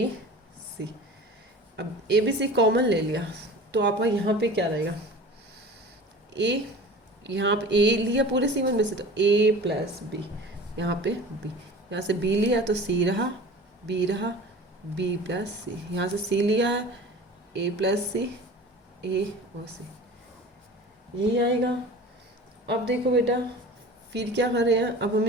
C, अब A B C कॉमन ले लिया, तो आपका यहाँ पे क्या रहेगा, A, यहाँ पे A लिया पूरे C1 में से, तो A प्लस B, यहाँ पे B, यहाँ से B लिया तो C रहा, B रहा, B प्लस सी, यहाँ से C लिया है, A प्लस सी, A और C, यही आएगा। अब देखो बेटा फिर क्या कर रहे हैं, अब हम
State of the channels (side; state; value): both; normal; correlation 0.39